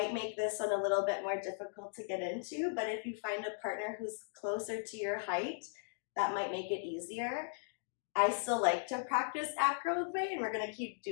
make this one a little bit more difficult to get into, but if you find a partner who's closer to your height, that might make it easier. I still like to practice acro with Ray, and we're going to keep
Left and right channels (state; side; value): silent; right; digital silence